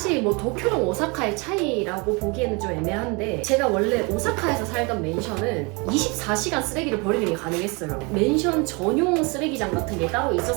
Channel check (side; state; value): left; quieter; 29.4 dB